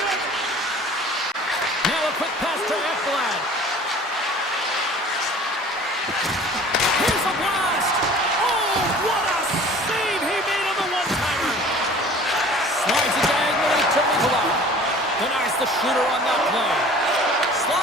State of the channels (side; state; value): both; normal; correlation 0.46